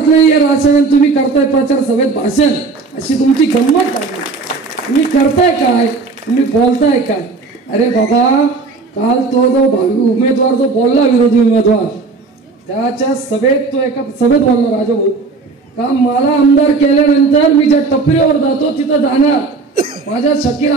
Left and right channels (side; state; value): left; quieter; 4.1 dB